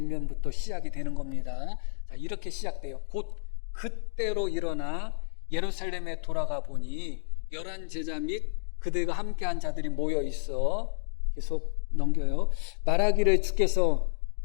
시작이 되는 겁니다. 자, 이렇게 시작돼요. 곧 그때로 일어나 예루살렘에 돌아가 보니 11 제자 및 그들과 함께한 자들이 모여 있어. 계속 넘겨요. 말하기를 주께서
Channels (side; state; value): right; silent; digital silence